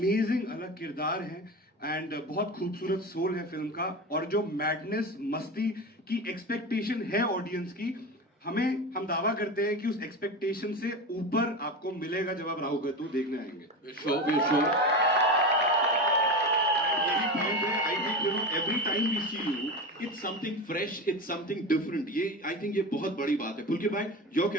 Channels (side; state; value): both; normal; correlation 0.24